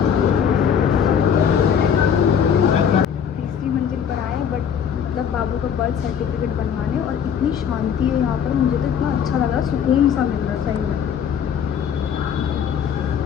रहती है यहाँ पर, मुझे तो इतना अच्छा लग रहा है, सुकून सा मिल रहा है सही में।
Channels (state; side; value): quieter; right; 7.9 dB